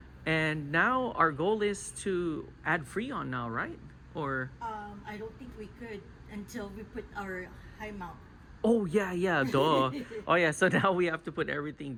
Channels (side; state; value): both; identical; correlation 1.00